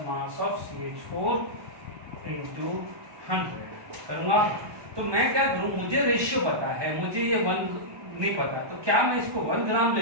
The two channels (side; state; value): left; late; 1.2 ms